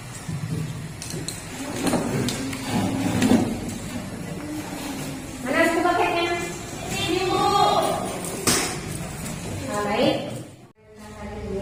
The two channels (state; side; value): identical; both; correlation 1.00